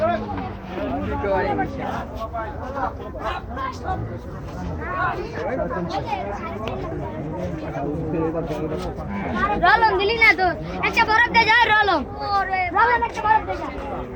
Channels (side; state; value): both; identical; correlation 1.00